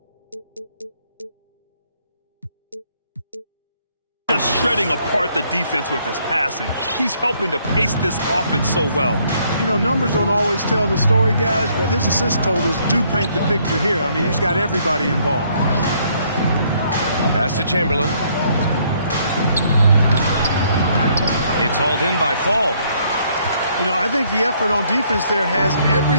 Just shredding apart the defense with his passing. He's helping to pace this offense so well. You know, numbers don't always tell the story, guys, but his assist totals do paint the picture here. I mean, he's got everybody involved. Pass to Chamberlain. It's hauled in by Fall. You know, I think the effort on defense there has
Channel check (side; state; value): both; inverted; correlation -0.67